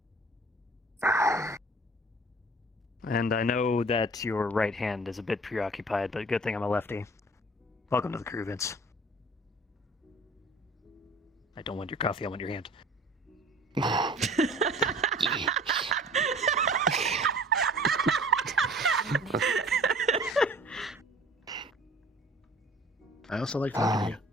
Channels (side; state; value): both; normal; correlation 0.47